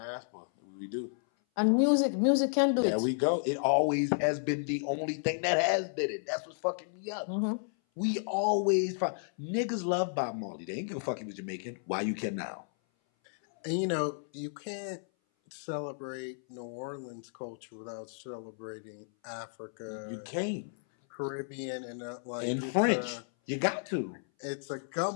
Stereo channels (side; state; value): right; silent; 56 dB below the other